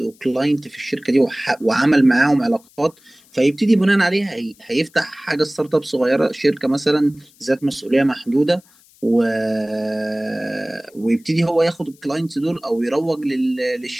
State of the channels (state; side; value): noise; left; hiss, 29 dB below the sound